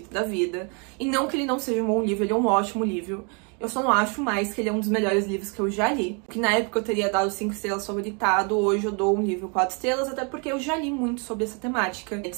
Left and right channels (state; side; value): quieter; left; 35.5 dB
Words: da vida. E não que ele não seja um bom livro, ele é um ótimo livro. Eu só não acho mais que ele é um dos melhores livros que eu já li. Que na época eu teria dado 5 estrelas favoritado, hoje eu dou um livro 4 estrelas, até porque eu já li muito sobre essa temática. De